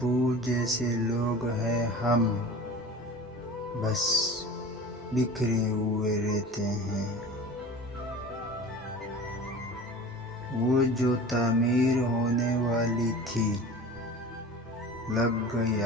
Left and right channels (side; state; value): both; normal; correlation 0.37